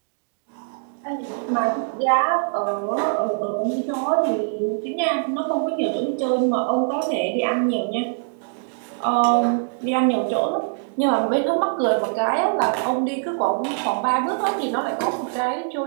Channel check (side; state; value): left; silent; digital silence